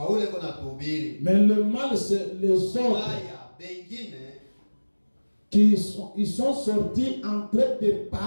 Mais le mal, c'est les autres qui sont sortis en train de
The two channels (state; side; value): inverted; both; correlation -1.00